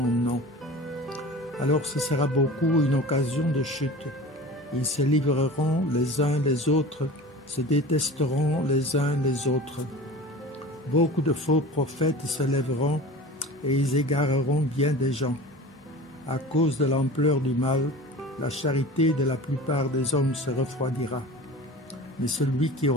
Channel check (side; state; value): both; normal; correlation 0.37